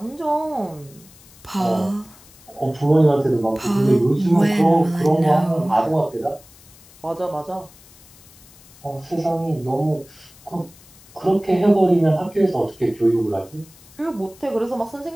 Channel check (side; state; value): left; noise; hiss, 24 dB below the sound